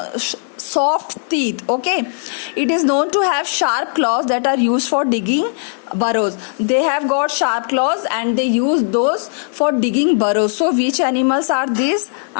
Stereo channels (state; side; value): silent; right; 68 dB below the other